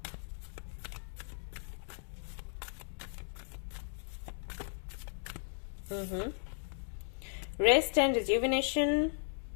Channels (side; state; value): right; silent; digital silence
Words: rest and rejuvenation.